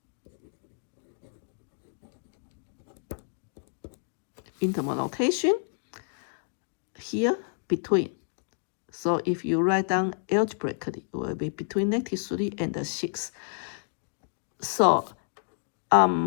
Interval notation here between. So if you write down algebraically, it will be between -3 and 6. So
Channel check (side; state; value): right; silent; digital silence